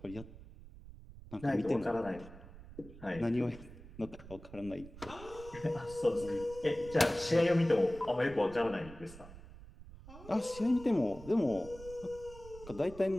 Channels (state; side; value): noise; right; rumble, 17 dB below the sound